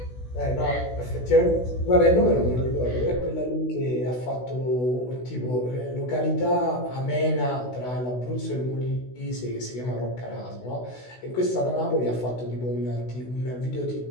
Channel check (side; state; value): right; late; 16 ms